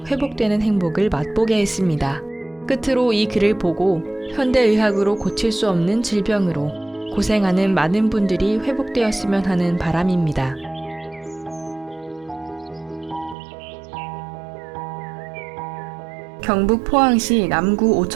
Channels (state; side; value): drops out; left; at 13.4 s